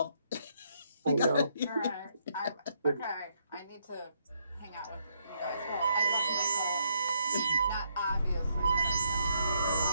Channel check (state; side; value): inverted; both; correlation -0.73